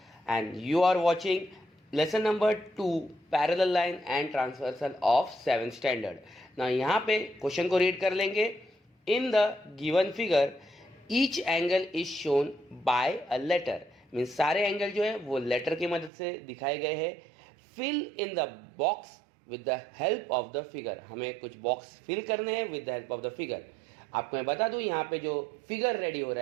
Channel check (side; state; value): left; drops out; at 16.1 s